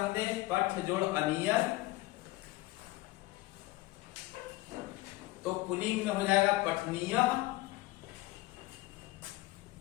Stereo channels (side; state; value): right; quieter; 19.1 dB